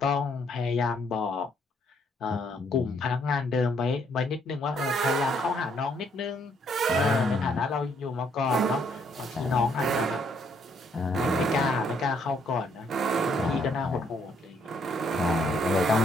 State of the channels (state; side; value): normal; both; correlation 0.69